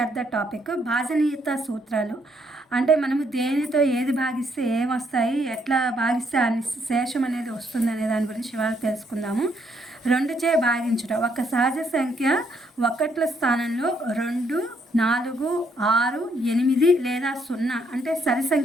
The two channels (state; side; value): normal; both; correlation 0.72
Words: the topic. భాజనీయత సూత్రాలు అంటే మనము దేనితో ఏది భాగిస్తే ఏమొస్తాయి, ఎట్లా భాగిస్తే ఆ శేషం అనేది వస్తుంది అనే దాని గురించి ఇవాళ తెలుసుకుందాము. 2చే భాగించుట. ఒక సహజ సంఖ్య ఒకట్ల స్థానంలో 2, 4, 6, 8 లేదా 0 అంటే సరి